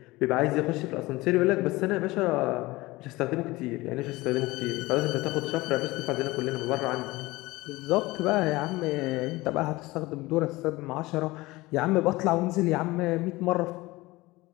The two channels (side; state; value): right; quieter; 20.5 dB